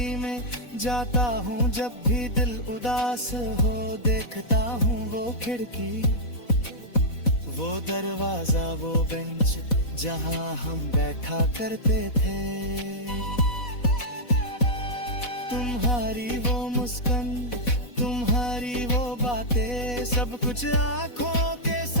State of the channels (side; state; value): right; late; 4.1 ms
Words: में जाता हूँ जब भी दिल उदास हो, देखता हूँ वो खिड़की वो दरवाजा वो बेंच जहाँ हम बैठा करते थे। तुम्हारी वो मुस्कान तुम्हारी वो बातें सब कुछ आंखों के